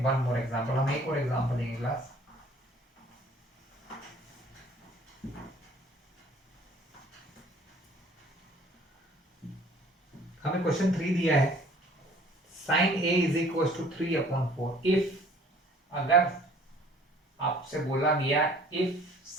one more example, हम एक और एग्जांपल लेंगे क्लास। हमें क्वेश्चन 3 दिया है, sine A is equal to 3/4। If, अगर आपसे बोला गया if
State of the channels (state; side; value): normal; both; correlation 0.53